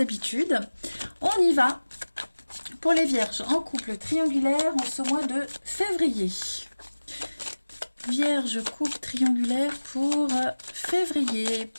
On y va pour les vierges en couple triangulaire en ce mois de février. Vierge, couple triangulaire pour février.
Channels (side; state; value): both; inverted; correlation -1.00